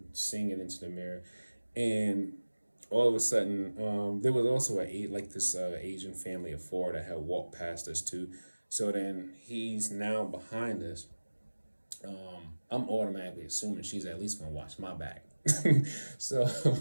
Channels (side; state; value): both; inverted; correlation -1.00